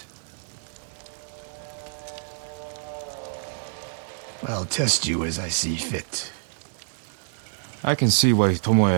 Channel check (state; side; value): silent; left; digital silence